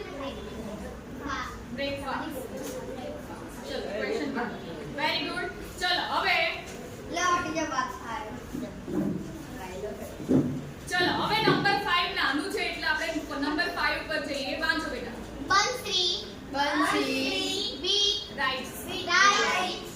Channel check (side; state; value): both; identical; correlation 1.00